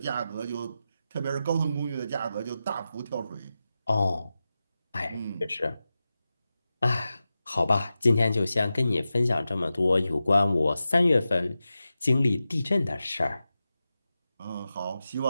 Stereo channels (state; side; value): inverted; both; correlation -0.92